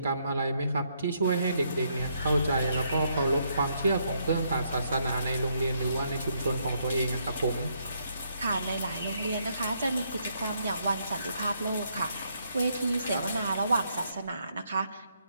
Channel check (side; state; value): both; inverted; correlation -0.74